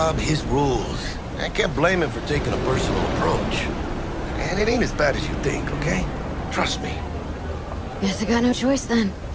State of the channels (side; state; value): both; identical; correlation 1.00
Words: his rules. I can't blame him for taking a personal approach. And it ain't as bad as you think, okay? Trust me. Guess I got no choice then.